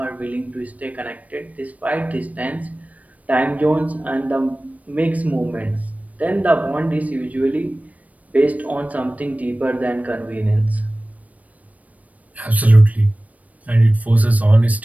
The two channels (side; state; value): left; late; 0.070 ms